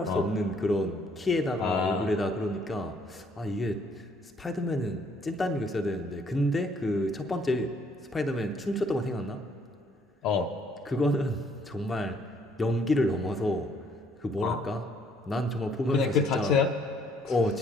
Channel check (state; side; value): normal; both; correlation 0.65